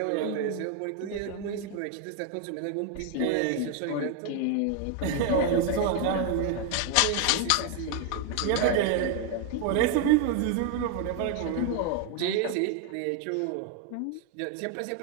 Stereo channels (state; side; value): different; both; correlation 0.01